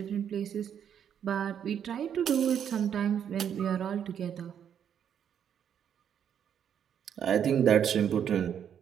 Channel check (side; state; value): left; quieter; 8.7 dB